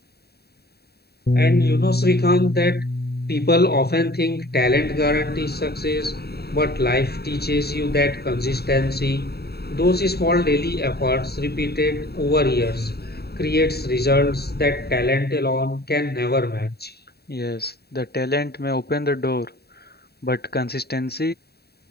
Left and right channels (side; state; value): right; late; 0.47 ms